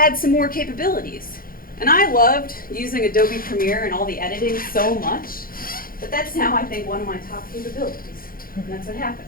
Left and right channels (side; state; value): right; late; 0.42 ms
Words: some more capabilities. And I loved using Adobe Premiere and all the editing so much that that's now, I think, one of my top capabilities. And that's what happened.